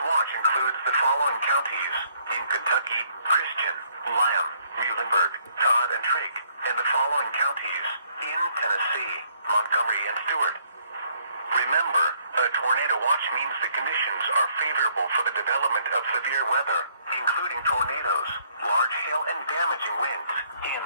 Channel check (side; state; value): both; inverted; correlation -0.66